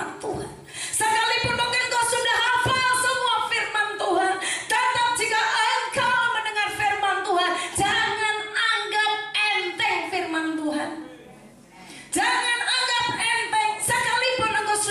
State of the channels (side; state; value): both; identical; correlation 1.00